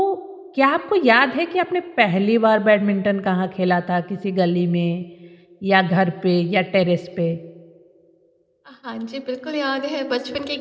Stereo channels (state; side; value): identical; both; correlation 1.00